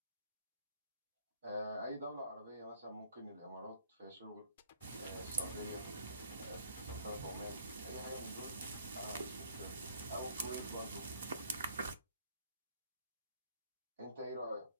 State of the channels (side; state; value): both; inverted; correlation -0.62